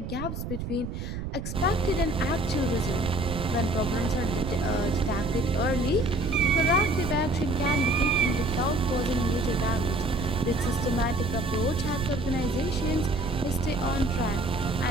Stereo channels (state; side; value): noise; right; rumble, 6 dB below the sound